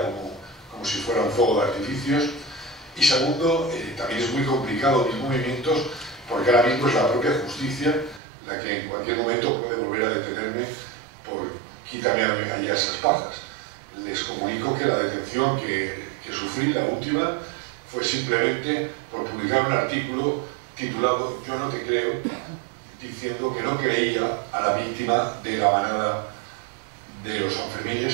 como si fuera un fuego de artificios. Y segundo, también es muy complicado mis movimientos, porque ahora mismo es la propia justicia la que en cualquier momento puede volver a detenerme por quítame allá esas pajas. Les comunico que la detención que sufrí, la última, fue simplemente por publicar un artículo titulado "Yo no te creo", diciendo que no creía a la víctima de la manada de los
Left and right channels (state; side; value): drops out; left; at 8.2 s